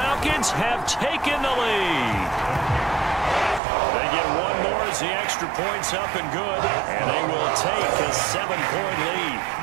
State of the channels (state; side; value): drops out; left; at 3.6 s